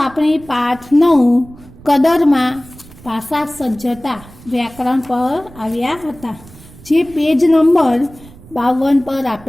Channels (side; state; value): right; noise; rumble, 22 dB below the sound